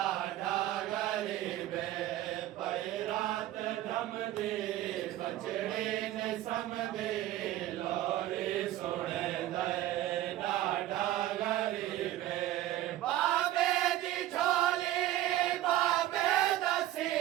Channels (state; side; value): quieter; left; 14.2 dB